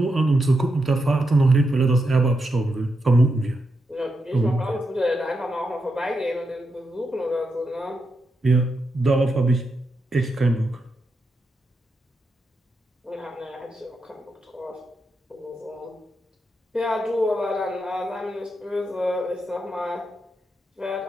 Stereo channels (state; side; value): normal; both; correlation 0.85